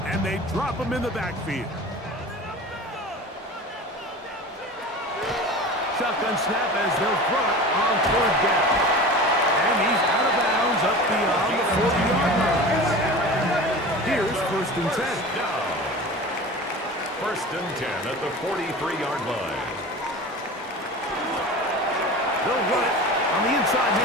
and they drop him in the backfield. Shotgun snap as they'll throw it on third down. And he's out of bounds up beyond the 40-yard line. Here's first and 10. First and 10 at the 43-yard line. They'll run it on the inside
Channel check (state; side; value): normal; both; correlation 0.34